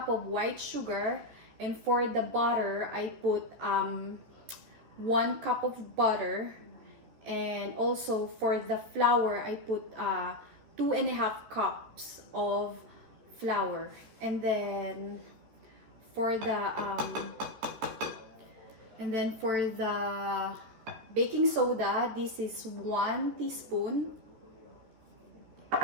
of white sugar. And for the butter, I put 1 cup of butter. And also for the flour, I put 2.5 cups of flour. And then for the baking soda, this is 1 teaspoon.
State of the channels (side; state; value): left; late; 14 ms